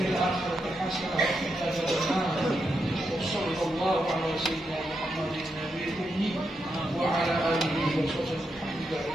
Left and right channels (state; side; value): normal; both; correlation 0.84